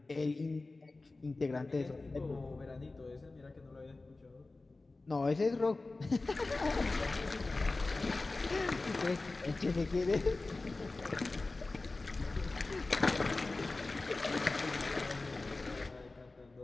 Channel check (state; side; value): quieter; right; 3.3 dB